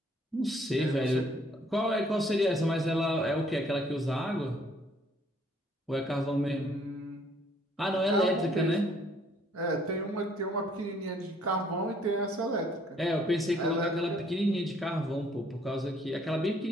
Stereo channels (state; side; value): normal; both; correlation 0.63